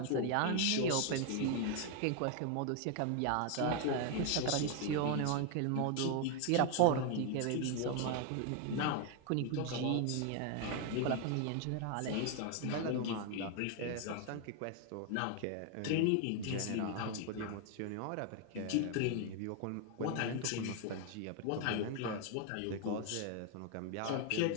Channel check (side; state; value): both; different; correlation 0.01